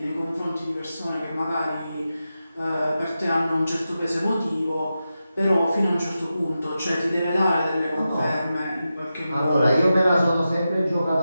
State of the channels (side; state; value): both; inverted; correlation -0.91